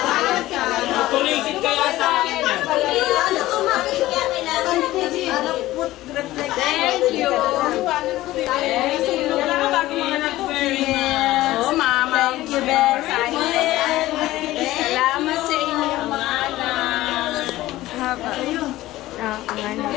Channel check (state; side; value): quieter; right; 16.4 dB